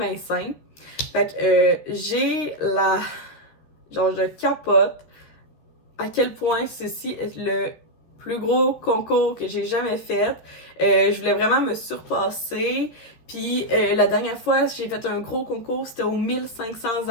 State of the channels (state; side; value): late; right; 13 ms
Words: simple. Fait que genre je capote à quel point ceci est le plus gros concours que j'ai jamais fait. Je voulais vraiment me surpasser. Puis la dernière fois, j'ai fait un gros concours, c'était aux 1500